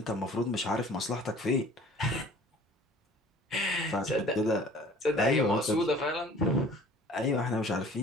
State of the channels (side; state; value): both; normal; correlation 0.49